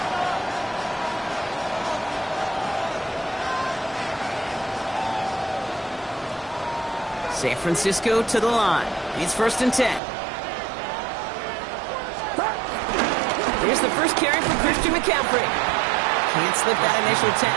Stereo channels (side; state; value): left; drops out; at 10.0 s